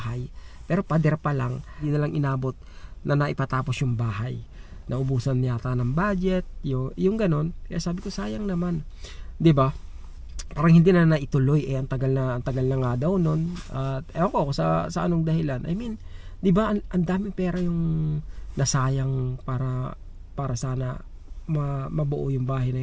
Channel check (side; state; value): both; identical; correlation 1.00